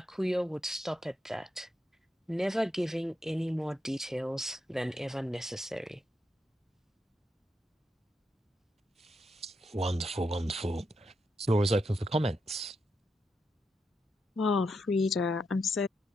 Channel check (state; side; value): normal; both; correlation 0.83